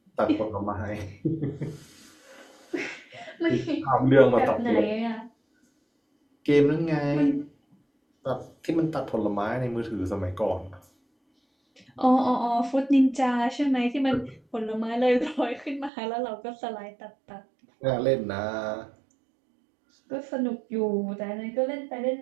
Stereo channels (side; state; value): left; drops out; at 15.9 s